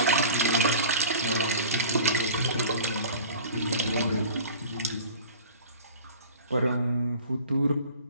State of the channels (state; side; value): inverted; both; correlation -0.40